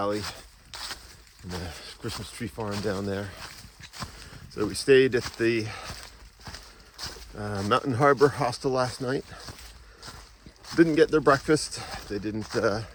and the Christmas tree farm down there. So we stayed at the Mountain Harbor Hostel last night. Didn't get their breakfast. They didn't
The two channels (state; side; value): identical; both; correlation 1.00